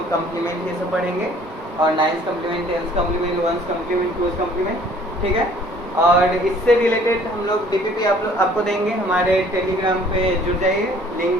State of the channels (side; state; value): both; normal; correlation 0.56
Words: कम्प्लीमेंट ये सब पढ़ेंगे, और 9th complement, 10th complement, 1st complement, 2th complement, ठीक है। और इससे रिलेटेड हम लोग DPP आपको देंगे, हमारे टेलीग्राम पे जुड़ जाइए,